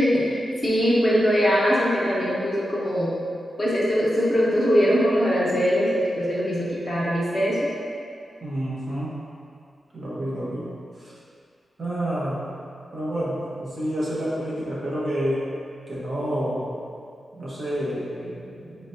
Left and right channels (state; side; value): normal; both; correlation 0.89